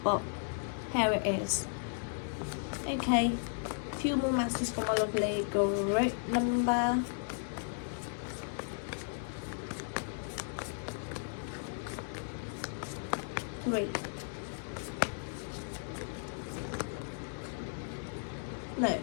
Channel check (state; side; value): silent; right; 54 dB below the other